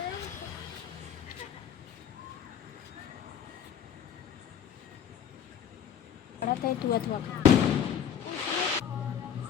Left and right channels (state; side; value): quieter; right; 8.6 dB